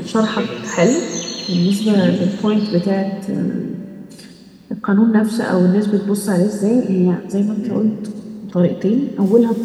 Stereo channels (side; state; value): both; identical; correlation 1.00